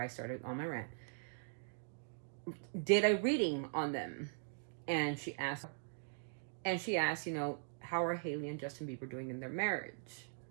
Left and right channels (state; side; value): silent; left; digital silence